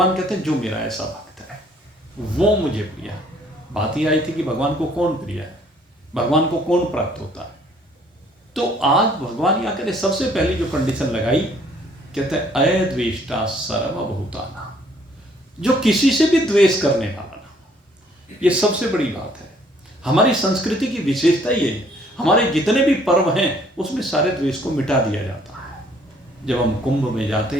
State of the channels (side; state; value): both; normal; correlation 0.61